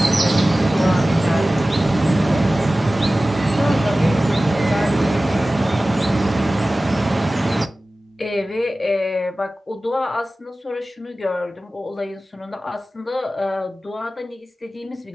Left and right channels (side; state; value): both; normal; correlation 0.96